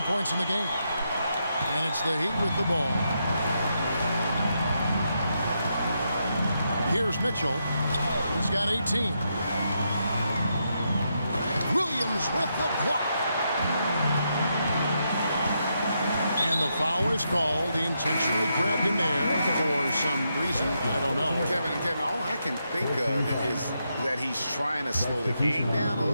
points in the game. And it's the Heat with the ball. Here's Mitchell. He's got 18. Williams with the block. And the foul is called. He intentionally grabbed him there for some reason. I don't know. Kevin, all I can think of is that he's trying to slow the game down a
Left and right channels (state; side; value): inverted; both; correlation -0.82